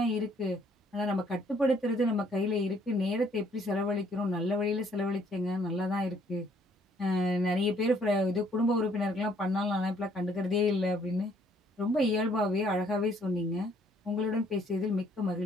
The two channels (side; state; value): both; normal; correlation 0.64